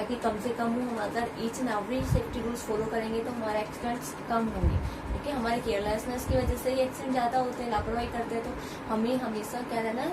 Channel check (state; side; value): identical; both; correlation 1.00